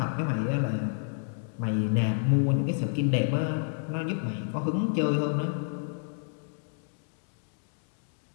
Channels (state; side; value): silent; right; digital silence